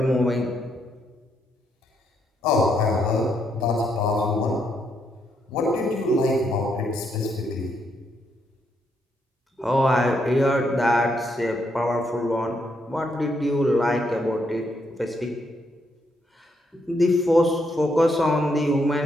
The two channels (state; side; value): normal; both; correlation 0.76